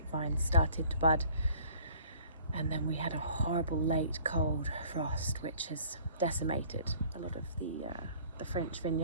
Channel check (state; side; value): inverted; both; correlation -0.52